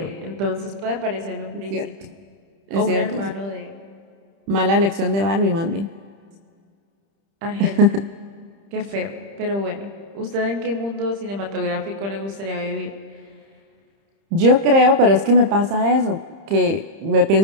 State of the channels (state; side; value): late; left; 30 ms